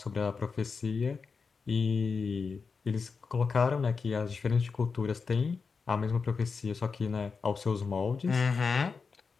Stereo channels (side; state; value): right; quieter; 5.0 dB